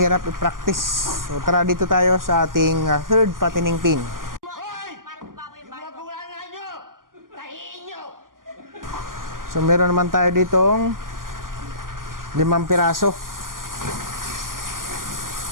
i-practice. So tara dito tayo sa ating third patining pin. So meron naman tayo ditong 5 piraso.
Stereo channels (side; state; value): left; late; 0.91 ms